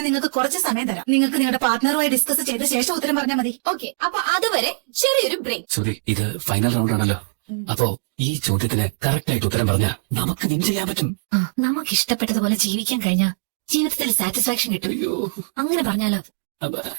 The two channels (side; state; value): left; silent; digital silence